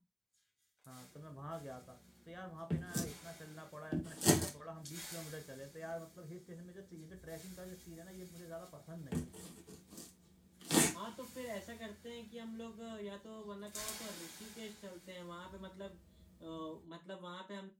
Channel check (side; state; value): both; identical; correlation 1.00